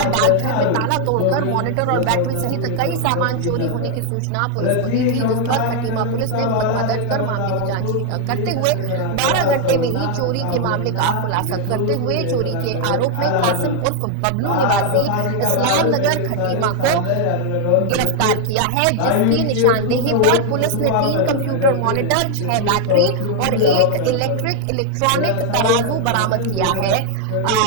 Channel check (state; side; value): different; both; correlation 0.00